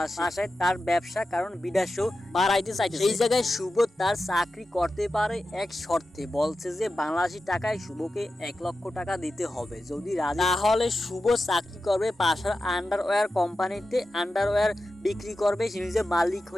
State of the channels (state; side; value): normal; both; correlation 0.91